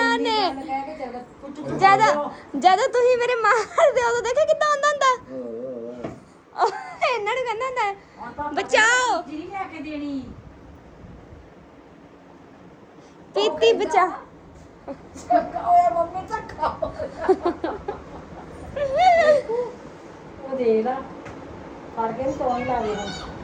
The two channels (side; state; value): both; identical; correlation 1.00